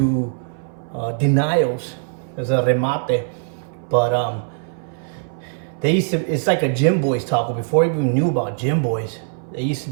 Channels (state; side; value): silent; left; 61 dB below the other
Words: Denials as a remate, but they used to. It's like a Gym Boys taco. Before I even knew about Gym Boys, they used to